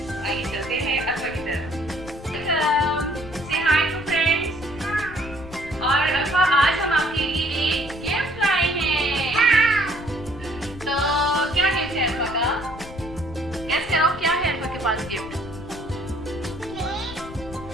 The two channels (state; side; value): noise; left; rumble, 14 dB below the sound